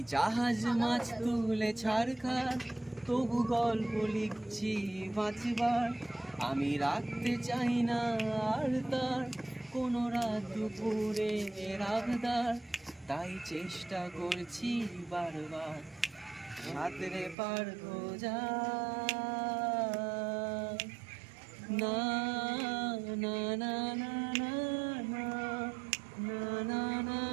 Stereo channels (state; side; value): drops out; left; at 17.4 s